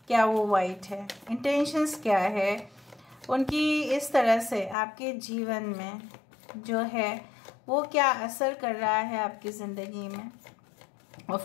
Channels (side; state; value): right; drops out; at 4.8 s